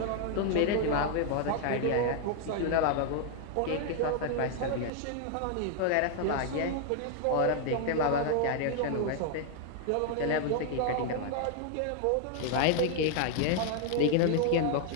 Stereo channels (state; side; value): different; both; correlation 0.00